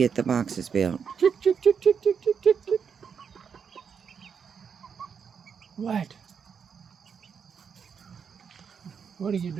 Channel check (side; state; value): left; quieter; 6.7 dB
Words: the boxes built. What? What are you